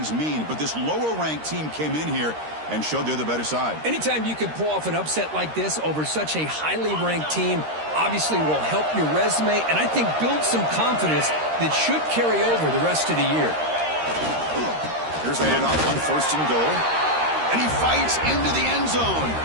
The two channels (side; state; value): left; late; 13 ms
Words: mean, but this lower-ranked team came in here and showed they're the better side. Anytime you can pull off an upset like this over such a highly ranked team, obviously will help your resume, and I think build some confidence that should carry over the rest of the year. Here's the handoff on first and goal. And he fights into the end zone.